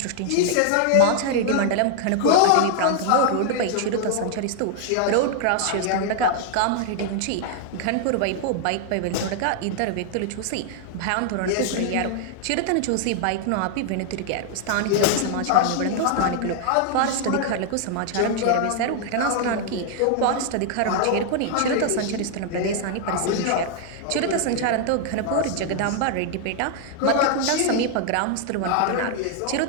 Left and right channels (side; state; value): both; different; correlation 0.00